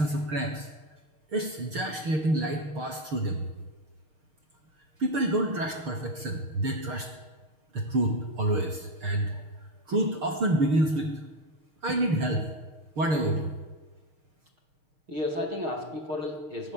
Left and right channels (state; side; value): late; left; 6.6 ms